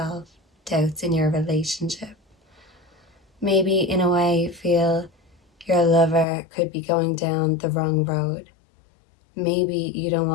doubts in your relationship. Maybe in a way you feel your lover could be going down the wrong road. Maybe you don't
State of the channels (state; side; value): drops out; right; at 6.2 s